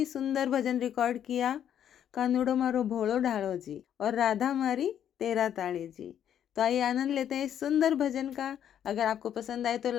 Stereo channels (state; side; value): quieter; right; 9.8 dB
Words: सुंदर भजन रिकॉर्ड किया। कानूड़ो मारो भोलो ढालो जी और राधा मारी तेरा ताड़ी जी। तो आइए आनंद लेते हैं इस सुंदर भजन का। अगर आपको पसंद आए तो